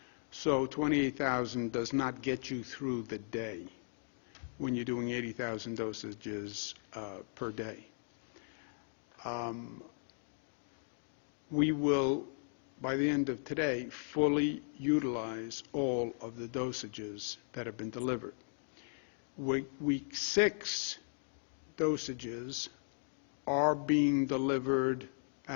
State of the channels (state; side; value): silent; right; digital silence